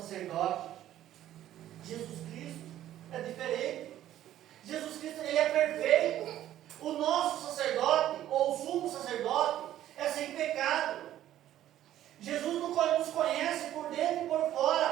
Jesus Cristo é diferente. Jesus Cristo, Ele é perfeito. O nosso sacerdote, ou o sumo sacerdote, é sem pecado. Jesus nos conhece por dentro e por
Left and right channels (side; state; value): left; quieter; 12.6 dB